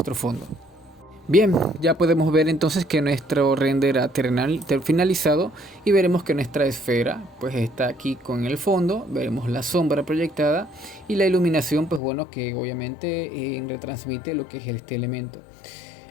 fondo. Bien, ya podemos ver entonces que nuestro render ha finalizado y veremos que nuestra esfera pues está aquí con el fondo, veremos la sombra proyectada y la iluminación pues bueno que obviamente retransmite lo que es este elemento.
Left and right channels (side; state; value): right; drops out; at 12.0 s